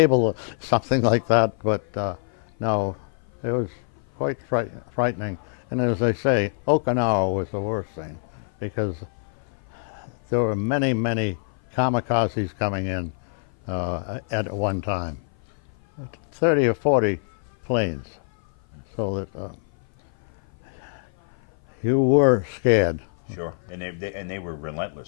or something like that. But no, it was quite frightening. And as they say, Okinawa was the worst thing, because there were many kamikazes coming in at one time, 30 or 40 planes, so that you were scared. Sure, and they were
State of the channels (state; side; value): silent; right; 56 dB below the other